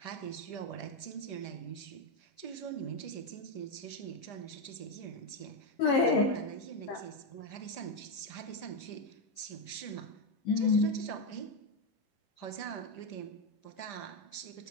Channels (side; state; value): right; late; 10 ms